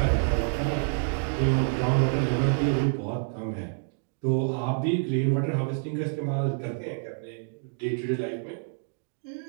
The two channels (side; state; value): left; silent; digital silence